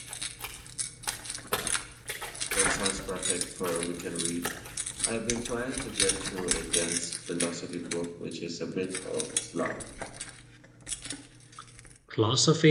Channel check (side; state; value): both; identical; correlation 1.00